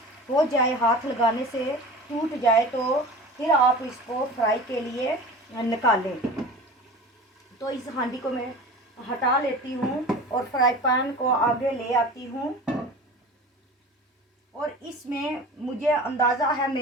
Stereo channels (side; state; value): both; normal; correlation 0.36